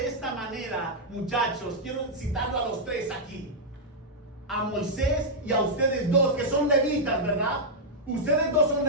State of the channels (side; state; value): both; normal; correlation -0.06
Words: esta manera, muchachos, quiero citarlo a los tres aquí. A Moisés y a ustedes dos, que son levitas, ¿verdad? Ustedes dos son